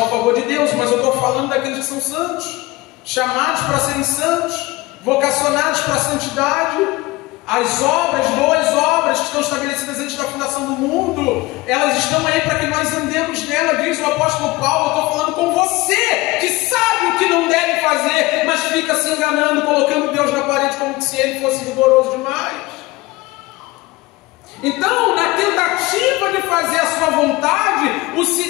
o favor de Deus, mas eu estou falando daqueles que são santos, chamados para serem santos, vocacionados para a santidade. As obras, boas obras que estão estabelecidas antes da fundação do mundo, elas estão aí para que nós andemos nela, diz o apóstolo Paulo. Eu estou falando com você, que sabe o que não deve fazer, mas fica se enganando, colocando Deus na parede como se ele fosse rigoroso demais. Então, na tentativa de fazer a sua vontade, o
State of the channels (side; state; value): right; quieter; 20.9 dB